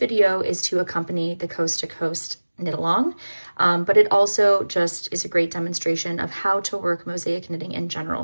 is to accompany the Coast to Coast knit along, but it also just is a great demonstration of how to work mosaic knitting in general,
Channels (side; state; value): both; inverted; correlation -1.00